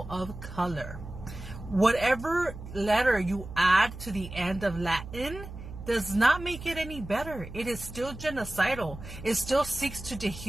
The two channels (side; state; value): right; noise; hum, 12 dB below the sound